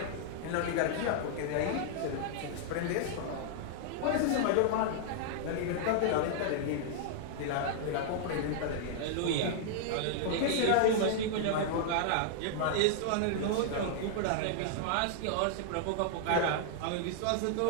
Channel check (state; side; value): different; both; correlation -0.01